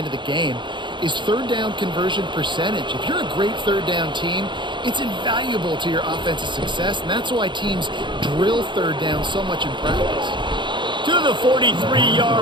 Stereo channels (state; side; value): late; left; 0.23 ms